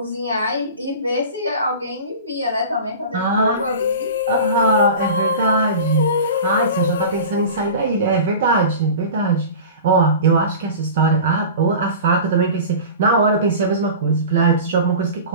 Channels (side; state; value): both; inverted; correlation -0.35